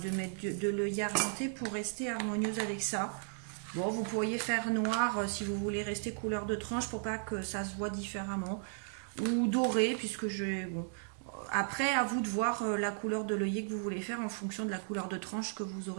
mettre de l'œillet argenté pour rester harmonieuse avec ça. Bon, vous pourriez faire noir si vous voulez rester couleur de tranche pour pas que ça se voit différemment, ou doré puisque je bon. Après, à vous de voir la couleur de l'œillet que vous voulez faire en fonction de la couleur de tranche que vous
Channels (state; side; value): silent; left; digital silence